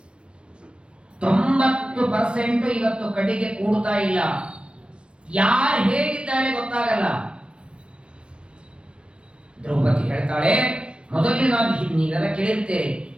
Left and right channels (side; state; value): left; late; 0.057 ms